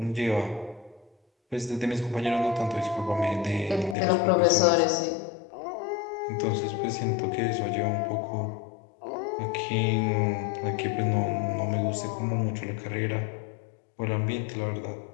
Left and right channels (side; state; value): right; drops out; at 4.0 s